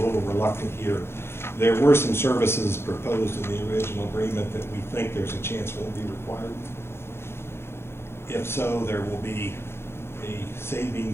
reluctant here, there were some services proposed in the original agreement that we think there's a chance won't be required. If so, there will be a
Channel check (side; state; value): right; late; 0.12 ms